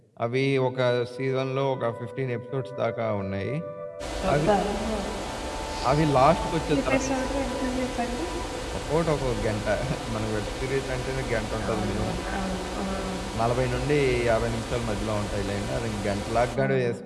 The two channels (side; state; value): both; identical; correlation 1.00